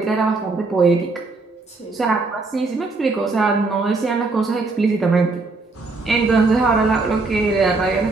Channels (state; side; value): quieter; left; 3.7 dB